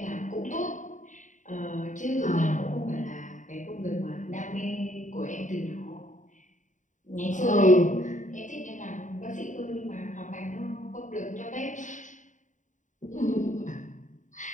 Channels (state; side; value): late; right; 0.36 ms